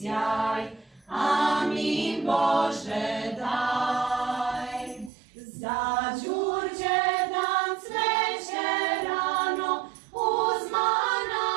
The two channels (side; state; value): left; drops out; at 5.1 s